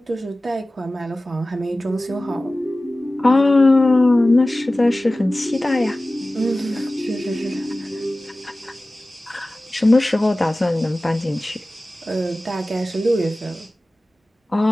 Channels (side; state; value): both; normal; correlation 0.97